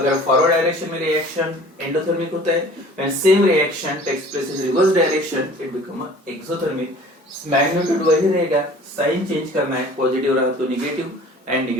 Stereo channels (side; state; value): both; normal; correlation 0.47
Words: फॉरवर्ड डायरेक्शन में रिएक्शन एंडोथर्मिक होता है, when same reaction takes place in reverse direction it become exothermic. Magnitude वही रहेगा, साइन चेंज करना है, पॉजिटिव रहा तो नेगेटिव एंड